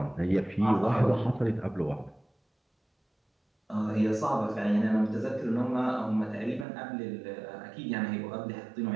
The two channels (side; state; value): left; drops out; at 6.7 s